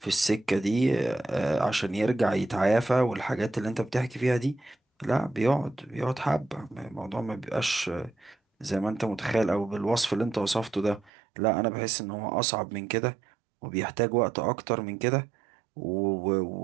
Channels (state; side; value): drops out; left; at 11.1 s